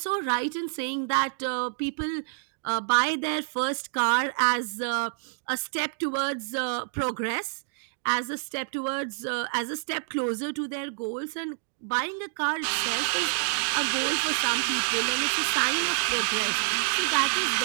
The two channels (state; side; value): silent; left; digital silence